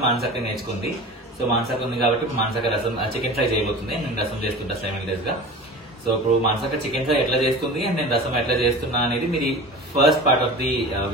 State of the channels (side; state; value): both; normal; correlation 0.36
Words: మానసక్క నేర్చుకుంది. సో మానసక్క ఉంది కాబట్టి మానసక్క రసం చికెన్ ఫ్రై చేయబోతుంది. నేను రసం చేస్తుంటా 7 days గా. సో ఇప్పుడు మానసక్క చికెన్ ఫ్రై ఎట్లా చేస్తుంది అండ్ నేను రసం ఎట్లా చేస్తున్నా అనేది మీరు first part of the